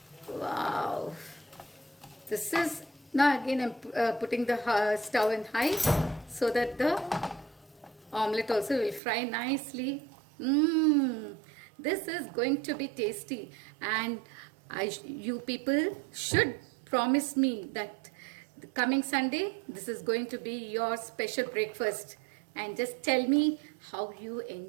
Wow, this is, now again I'm putting the stove in high, so that the omelette also will fry nicely. This is going to be tasty, and you people should promise me that the coming Sunday this is going to be your special breakfast, and just tell me how you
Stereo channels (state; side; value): drops out; left; at 9.0 s